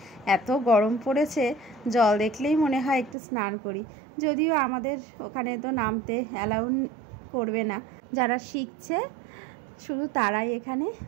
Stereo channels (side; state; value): left; drops out; at 3.2 s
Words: এত গরম পড়েছে, জল দেখলেই মনে হয় একটু স্নান করি। যদিও আমাদের ওখানে তো নামতে অ্যালাউ করবে না, যারা শিখছে শুধু তারাই এখানে